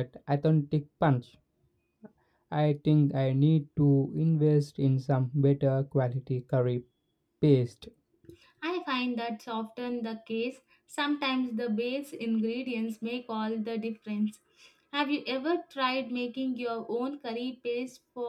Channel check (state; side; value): identical; both; correlation 1.00